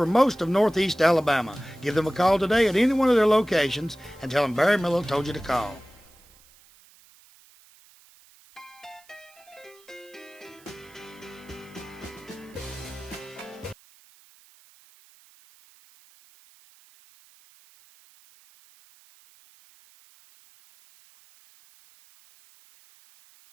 most of Northeast Alabama. Give them a call today at any one of their locations and tell them Barry Miller told you to call.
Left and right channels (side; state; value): right; noise; hiss, 27 dB below the sound